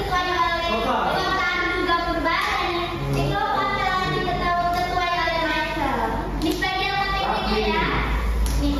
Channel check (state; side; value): identical; both; correlation 1.00